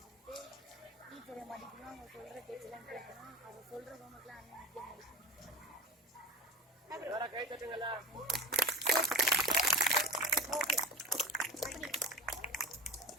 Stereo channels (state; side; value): normal; both; correlation 0.31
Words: டீச்சரை மதிக்கணும், அவங்க சொல்கிற பேச்செல்லாம் கேட்கணும், அவங்க சொல்கிற ஹோம்ஒர்க்லாம் அண்ணன் முக்கியம் முடிக்கணும். கை தட்டுங்களா.